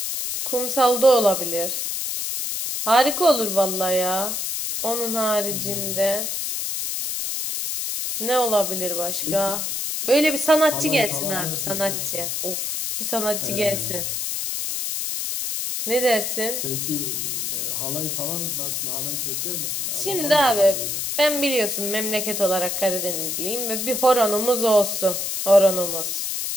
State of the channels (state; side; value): noise; left; hiss, 2 dB below the sound